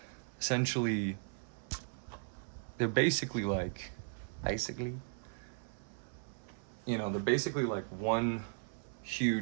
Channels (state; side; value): silent; left; 53 dB below the other